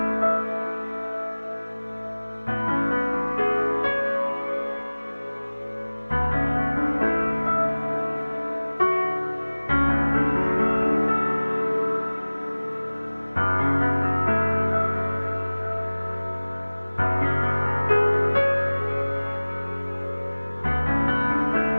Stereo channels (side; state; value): both; inverted; correlation -1.00